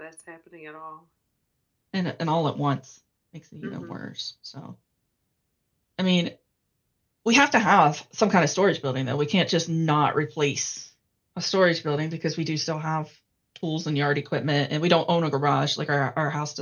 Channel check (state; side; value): identical; both; correlation 1.00